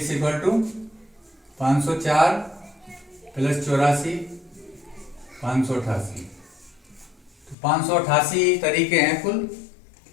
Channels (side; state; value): right; drops out; at 7.6 s